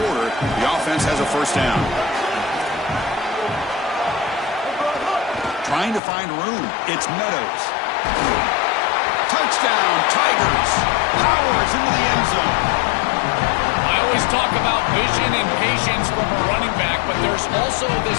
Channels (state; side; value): drops out; right; at 6.0 s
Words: The offense has a first down. Trying to find room. It's Meadows. Touchdown, Tigers. Powers into the end zone. I always talk about vision and patience from a running back, but there's also this